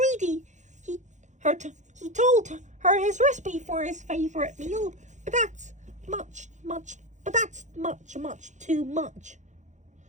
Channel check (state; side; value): late; left; 0.35 ms